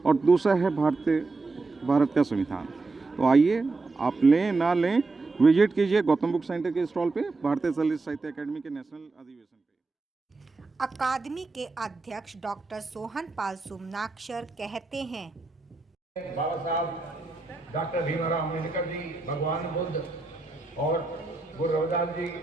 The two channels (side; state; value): left; quieter; 3.6 dB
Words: और दूसरा है भारत का संविधान। तो आइए आप लें ना लें, विजिट कीजिए गौतम बुक सेंटर के स्टॉल पे, भारतीय दलित साहित्य अकेडमी के नेशनल अधिवेशन पे। अकादमी के अध्यक्ष डॉक्टर सोहन पाल सुमनाक्षर कहते हैं, बाबा साहब डॉक्टर भीमराव अम्बेडकर जी, भगवान बुद्ध और गुरु रविदास जी